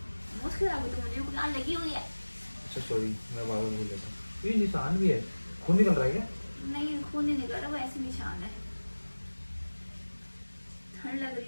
मोमोज खिलाओगे तो मुझे बुखार लगी हुई है। अच्छा सॉरी, मैं बार बार भूल जाता हूँ। ये निशान भी है, खून निकल रहा है क्या? नहीं, खून नहीं निकल रहा, वो ऐसे निशान है। ठंड लग रही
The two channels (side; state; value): both; inverted; correlation -1.00